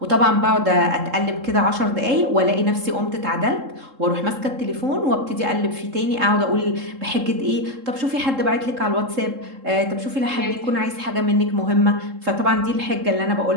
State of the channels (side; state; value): left; late; 3.7 ms